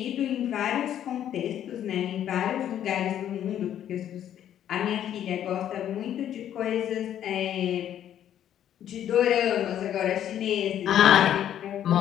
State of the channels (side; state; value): right; quieter; 10.6 dB